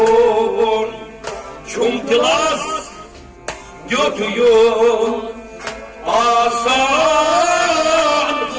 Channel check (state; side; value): identical; both; correlation 1.00